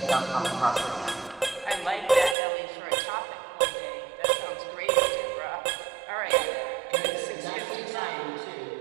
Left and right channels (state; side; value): drops out; left; at 2.4 s